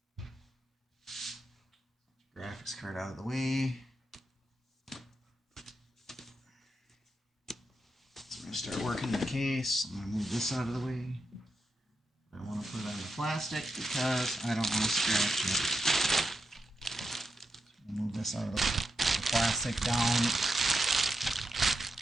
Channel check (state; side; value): normal; both; correlation 0.86